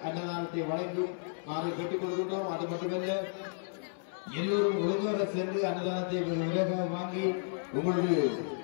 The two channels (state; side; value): silent; right; 56 dB below the other